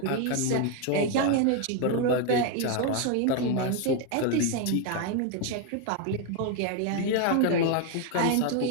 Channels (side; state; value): both; different; correlation 0.01